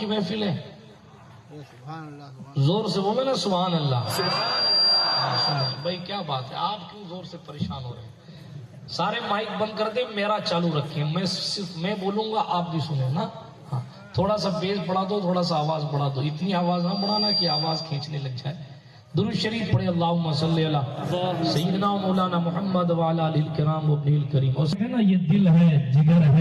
محفل ہے، زور سے بولے نا سبحان اللہ. بھائی کیا بات ہے، آپ کیوں زور سے پریشان ہو رہے ہیں؟ سارے مائک بند کر دیں، میرا چالو رکھیں، میں بولوں گا آپ بھی سنیں نا. ہاں تھوڑا سا بیس بڑھا دو، تھوڑا سا آواز بڑھا دو، اتنی آواز نہ بڑھانا کہ آواز کھینچنے لگ جائے. درود شریف پڑھے اللہم صلی علی سیدنا مولانا محمد وعلی آلہ الکرام و ابنہ الکریم. یہ دل ہے، جگر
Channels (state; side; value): identical; both; correlation 1.00